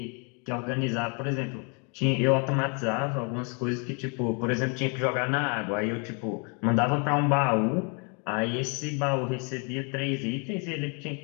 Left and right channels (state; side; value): quieter; right; 36.4 dB